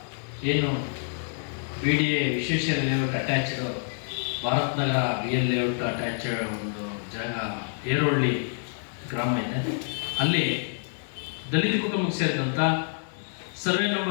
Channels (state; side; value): silent; right; digital silence